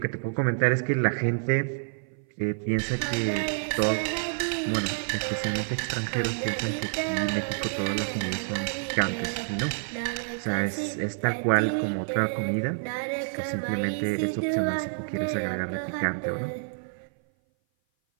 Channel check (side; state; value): left; silent; 57 dB below the other